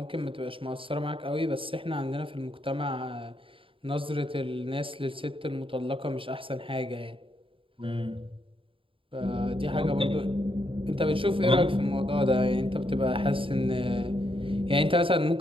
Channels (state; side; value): late; left; 0.26 ms